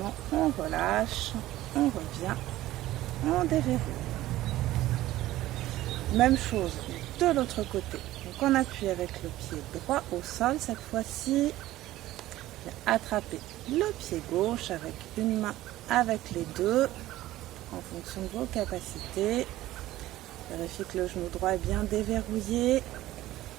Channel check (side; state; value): left; quieter; 15.6 dB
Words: on relâche, on revient, on déverrouille. Même chose de l'autre côté. Donc on appuie avec le pied droit au sol. Cette fois-ci, attrapez le pied gauche avec une main, avec les deux, en fonction de vos capacités. Vérifiez que le genou droit est bien déverrouillé.